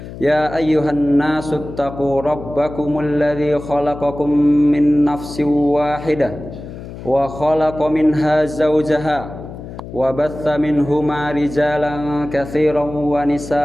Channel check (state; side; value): noise; left; hum, 12 dB below the sound